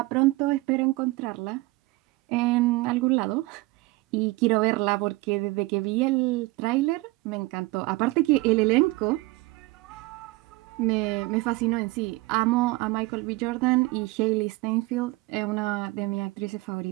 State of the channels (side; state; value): left; quieter; 21.6 dB